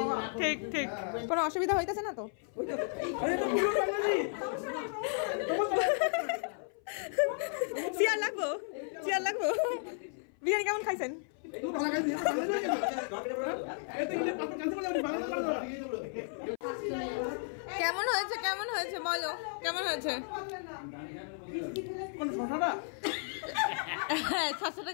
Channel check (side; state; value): right; silent; 55 dB below the other